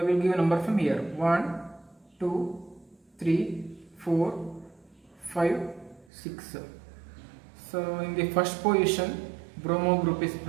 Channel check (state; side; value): drops out; left; at 6.1 s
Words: will give a number from here: 1, 2, 3, 4, 5, 6. So in the first position bromo group is